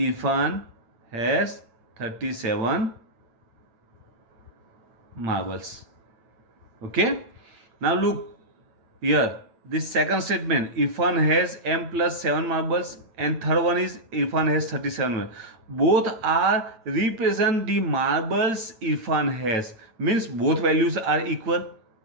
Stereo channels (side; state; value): left; late; 9.2 ms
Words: has 37 marbles. Okay, now look here, this second statement, Irfan has m plus 7 marbles, and third one is Irfan has 37 marbles. Both are represent the marbles Irfan has, means both values are equal.